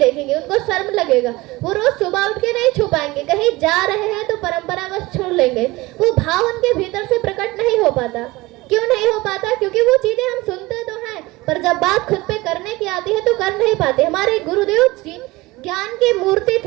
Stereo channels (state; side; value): quieter; left; 20.8 dB